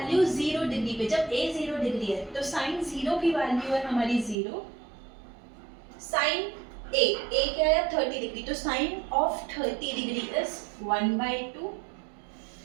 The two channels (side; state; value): left; drops out; at 4.4 s